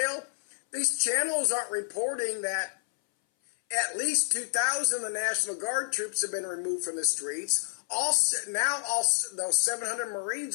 These channels aren't reporting that at least 2,000 of the National Guard troops have been removed from the streets. Now those 700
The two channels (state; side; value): silent; right; 58 dB below the other